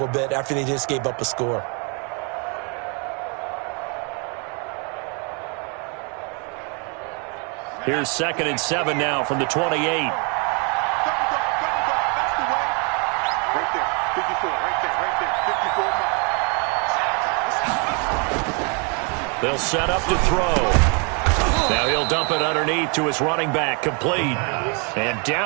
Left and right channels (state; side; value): quieter; left; 35.5 dB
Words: bit after they just gave up a score. Here's 2nd and 7 now from the 28. They'll set up to throw. Now he'll dump it underneath to his running back, complete. And